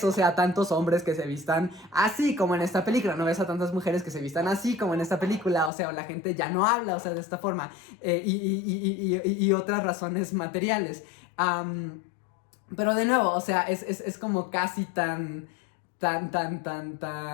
o sea, tantos hombres que se vistan así como en esta película, no ves a tantas mujeres que se vistan así como en esta película, o sea, la gente ya no habla, o sea, de esta forma, y otras razones materiales. Pero de nuevo, o sea, es como casi tan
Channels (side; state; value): right; drops out; at 5.7 s